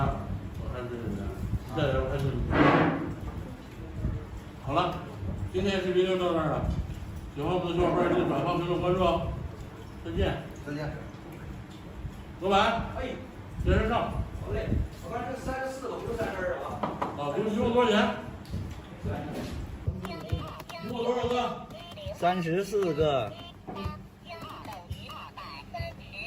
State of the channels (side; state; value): both; identical; correlation 1.00